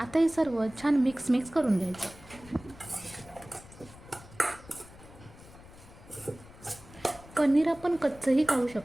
हे सर्व छान मिक्स करून घ्यायचं. पनीर आपण कच्चंही खाऊ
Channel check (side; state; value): left; noise; rumble, 20 dB below the sound